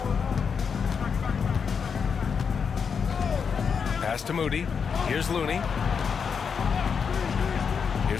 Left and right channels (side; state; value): right; quieter; 6.3 dB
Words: Pass to Moody. Here's Looney.